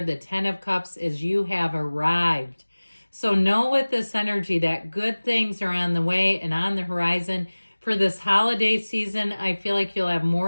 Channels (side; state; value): both; inverted; correlation -1.00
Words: The Ten of Cups is you have arrived. So know with this energy that good things are on the way and on the horizon. For this holiday season, I feel like you'll have